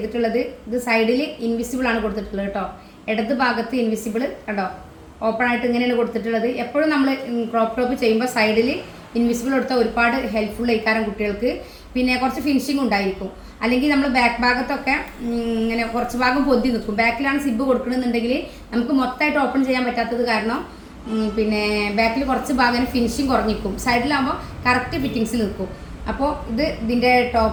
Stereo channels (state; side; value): identical; both; correlation 1.00